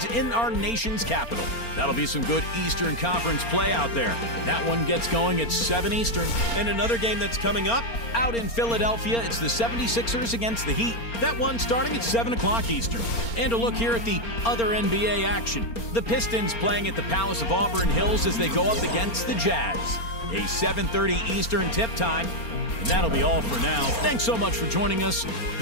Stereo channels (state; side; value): late; right; 4.3 ms